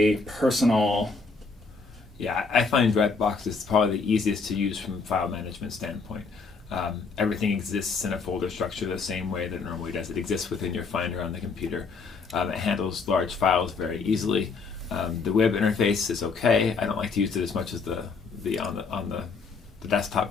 personal. Yeah, I find Dropbox is probably the easiest to use from a file management standpoint. Everything exists in a folder structure the same way that it normally does. It exists within your Finder on the computer. It handles large files very easily. The web interface is okay. I don't like to use it as much as the desktop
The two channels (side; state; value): right; quieter; 4.6 dB